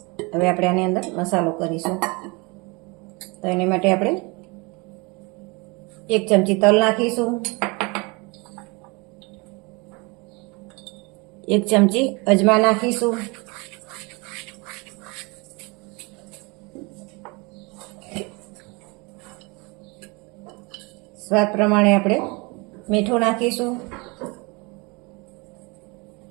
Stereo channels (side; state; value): left; quieter; 28.0 dB